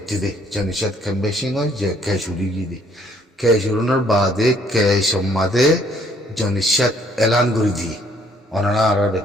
দে জনিষাদ কম বেশি হয় যে কেশুরি গিয়ে দে কেশুরুনের বাদে কেশমাদে জনিষাদ এলান করে দিয়ে অনানা আর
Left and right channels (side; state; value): both; normal; correlation 0.63